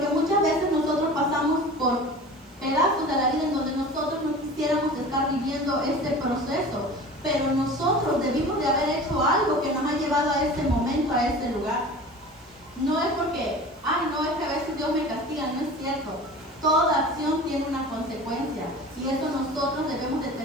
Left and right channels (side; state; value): both; normal; correlation 0.38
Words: muchas veces nosotros pasamos por pedazos de la vida en donde nosotros no quisiéramos estar viviendo este proceso, pero nosotros debimos de haber hecho algo que nos ha llevado a ese momento, a ese lugar. No es porque, no, es que a veces Dios me castiga, no es cierto. Toda acción tiene una consecuencia, y eso nosotros debemos de